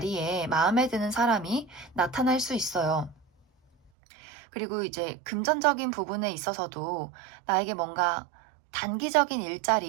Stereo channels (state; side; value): drops out; left; at 3.9 s